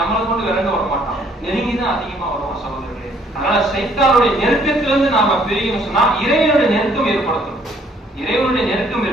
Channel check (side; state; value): both; normal; correlation 0.63